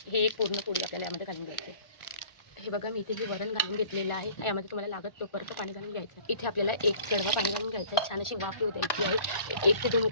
हे एक पूर्ण पोळी आपल्याला यामध्ये घालून घ्यायचं आहे. हे बघा मी इथे हे वरण घालून घेतलेलं आहे. यामध्ये तुम्हाला लागत तोपर्यंत पाणी घालून घ्यायचं. इथे आपल्याला एक कडवा पाणी घालून घ्यायचं आहे. छान अशी वाफ येऊ द्यायची आहे. 1 ते 2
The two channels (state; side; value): late; right; 1.4 ms